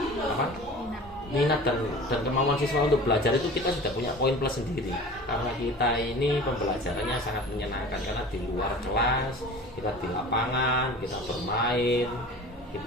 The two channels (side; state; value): both; normal; correlation 0.39